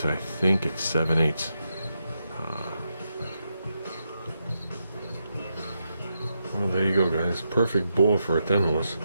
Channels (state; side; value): inverted; both; correlation -0.83